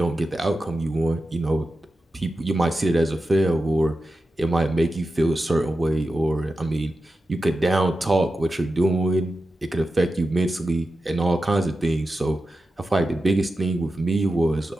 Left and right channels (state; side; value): normal; both; correlation 0.91